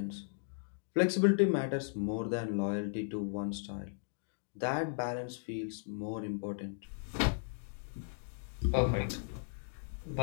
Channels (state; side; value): silent; right; digital silence